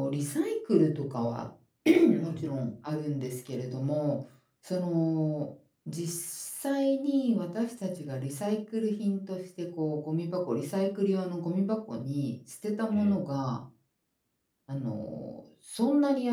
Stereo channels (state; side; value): identical; both; correlation 1.00